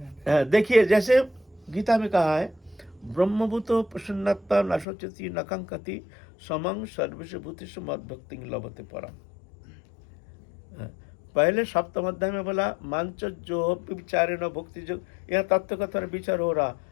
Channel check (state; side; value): drops out; right; at 4.9 s